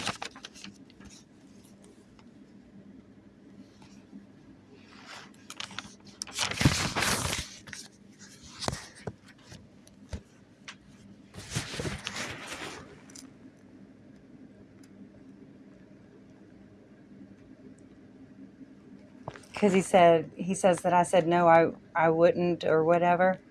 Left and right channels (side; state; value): both; identical; correlation 1.00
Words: because he says that I said no, I wouldn't or whatever.